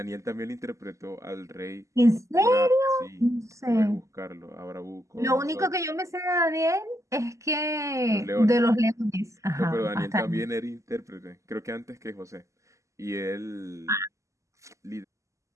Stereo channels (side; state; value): left; late; 0.15 ms